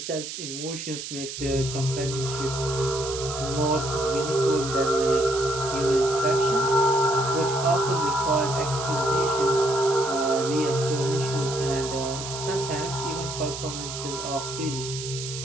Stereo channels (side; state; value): right; noise; hiss, 8 dB below the sound